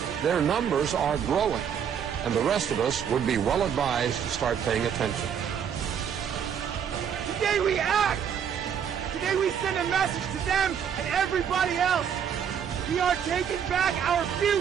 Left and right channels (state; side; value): quieter; left; 8.1 dB